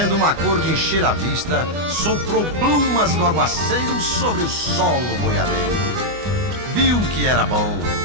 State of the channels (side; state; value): left; late; 24 ms